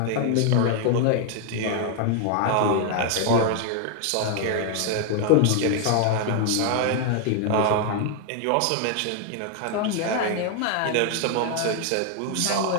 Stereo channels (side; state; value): both; different; correlation 0.00